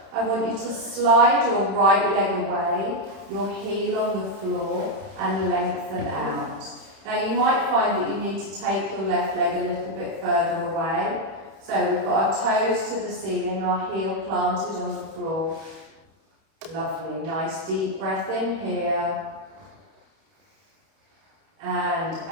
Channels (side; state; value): left; late; 31 ms